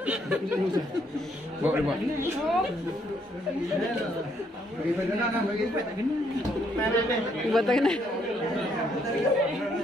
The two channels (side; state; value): both; normal; correlation 0.71